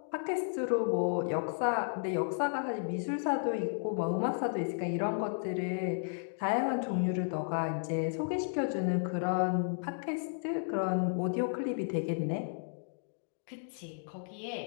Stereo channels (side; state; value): right; silent; digital silence